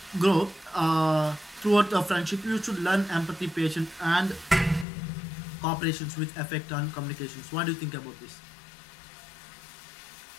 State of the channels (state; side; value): drops out; right; at 4.9 s